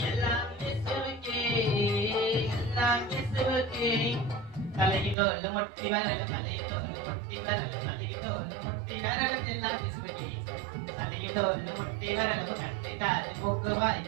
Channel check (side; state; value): left; drops out; at 5.2 s